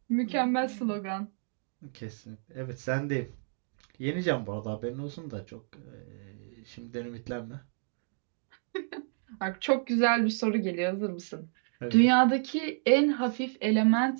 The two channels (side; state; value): left; silent; digital silence